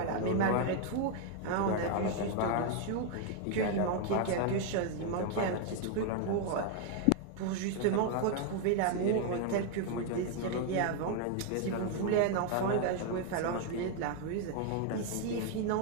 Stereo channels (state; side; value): different; both; correlation 0.01